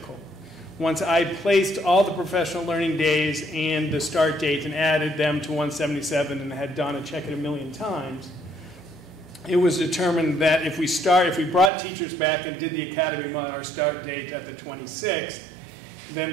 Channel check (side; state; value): left; drops out; at 11.7 s